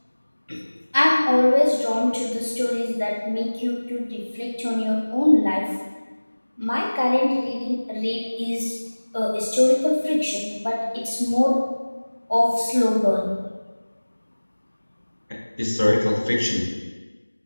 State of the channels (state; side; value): inverted; both; correlation -1.00